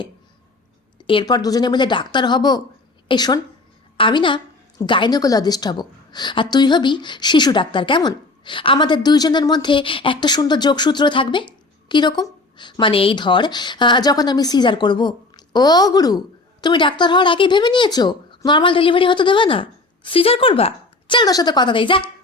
এরপর দুজনে মিলে ডাক্তার হব। এই শোন, আমি না গাইনোকোলজিস্ট হব, আর তুই হবি শিশু ডাক্তার, কেমন? আমাদের দুইজনের মধ্যে একটা সুন্দর যোগসূত্র থাকবে। কীরকম? মানে এই ধর, যখন আমি সিজার করব, ও গুরু, তুমি ডাক্তার হওয়ার আগেই ভেবে নিয়েছো নর্মাল ডেলিভারি হতে দেবে না, সিজার করবা? চল তোর সাথে কথা দেই, যা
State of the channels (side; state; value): right; quieter; 3.2 dB